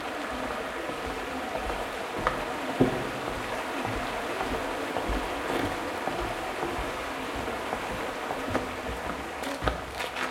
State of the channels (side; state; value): both; identical; correlation 1.00